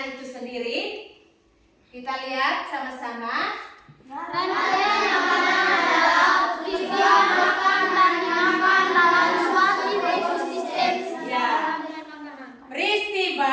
itu sendiri? Kita lihat sama-sama. Rantai makanan adalah peristiwa makan dan makan dalam suatu ekosistem. Ya.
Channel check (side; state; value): both; identical; correlation 1.00